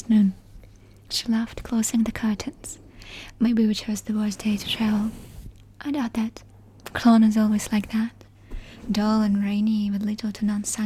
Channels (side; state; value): both; identical; correlation 1.00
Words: noon. She laughed, closing the curtains. Maybe we chose the worst day to travel. I doubt that. Cologne is always like that. Dull and rainy with little to none